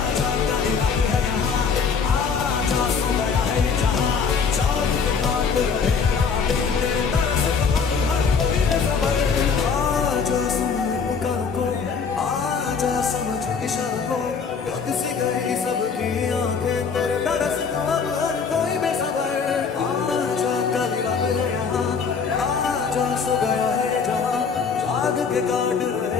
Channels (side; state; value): right; quieter; 5.8 dB